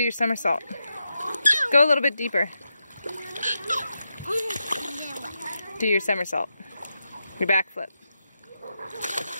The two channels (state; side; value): inverted; both; correlation -0.86